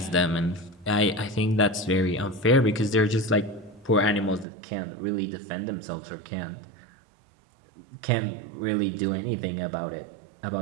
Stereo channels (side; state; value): left; drops out; at 4.5 s